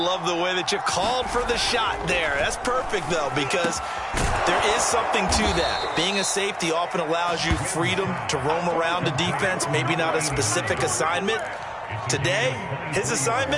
the way that you called for the shot there. That's perfect, though, because there is something to that. Being a safety often allows you freedom to roam around the defense, maybe not a specific assignment. Today, his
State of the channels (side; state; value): both; identical; correlation 1.00